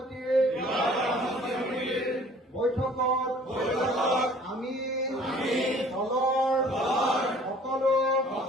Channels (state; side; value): normal; both; correlation 0.53